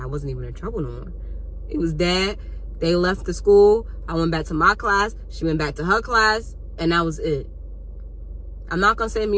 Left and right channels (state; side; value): identical; both; correlation 1.00